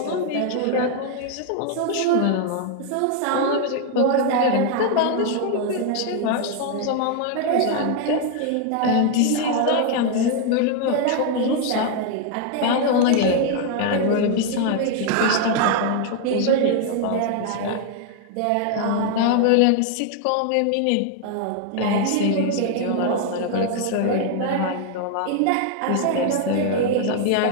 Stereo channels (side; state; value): both; different; correlation 0.00